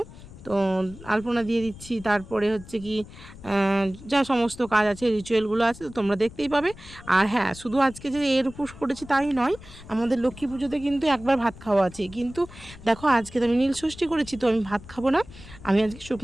তো আলপনা দিয়ে দিচ্ছি, তারপরে হচ্ছে কি যা সমস্ত কাজ আছে, রিচুয়ালগুলো আছে, তো তোমরা দেখতেই পাবে। আর হ্যাঁ, শুধু আজকে যে এর উপোস করেছি তাই নয়, আমাদের লক্ষ্মী পুজোতে কিন্তু একবার ভাত খাওয়া আছে। কিন্তু দেখো আজকে তো আমি নীল ষষ্ঠী করেছি, তো আমি ভাত খাবো না, আমি আজকে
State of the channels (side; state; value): left; noise; rumble, 18 dB below the sound